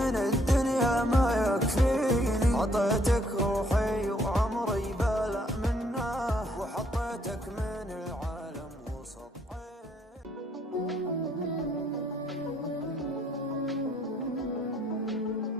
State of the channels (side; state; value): both; normal; correlation 0.68